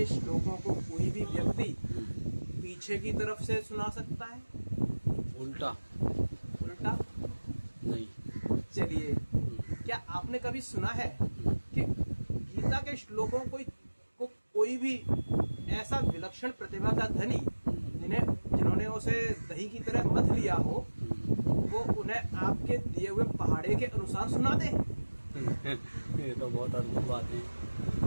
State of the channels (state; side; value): inverted; both; correlation -1.00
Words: श्लोकों को कोई भी व्यक्ति पीछे की तरफ से सुना सकता है? उल्टा? उल्टा नहीं। चलिए, क्या आपने कभी सुना है कि गीता के श्लोकों को कोई भी ऐसा विलक्षण प्रतिभा का धनी जिन्होंने उसे दही की तरह मथ लिया हो, वो उन्हें आपके दिए हुए पहाड़े के अनुसार सुना दे? ये तो बहुत अद्भुत बात है।